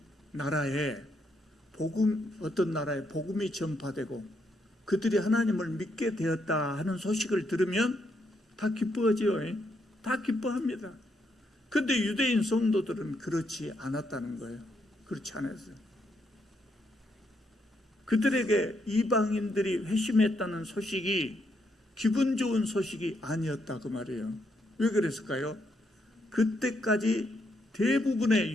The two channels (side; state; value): both; normal; correlation 0.77